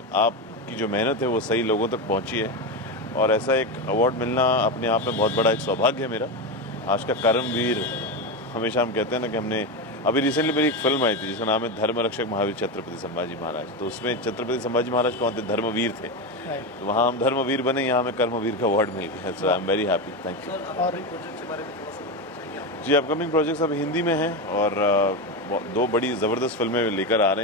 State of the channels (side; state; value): both; normal; correlation 0.15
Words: जो मेहनत है वो सही लोगों तक पहुंची है, और ऐसा एक अवार्ड मिलना अपने आप में बहुत बड़ा एक सौभाग्य है मेरा। आज का कर्मवीर, हमेशा हम कहते हैं ना कि हमने अभी रिसेंटली मेरी एक फिल्म आई थी जिसका नाम है धर्मरक्षक महावीर छत्रपति संभाजी महाराज। तो उसमें छत्रपति संभाजी महाराज कौन थे? धर्मवीर थे। तो वहाँ हम धर्मवीर बने, यहाँ हमें कर्मवीर का अवार्ड मिल गया। So I am very happy. Thank you. और जी, अपकमिंग प्रोजेक्ट्स अब हिंदी में हैं और दो बड़ी ज़बरदस्त फिल्में लेकर आ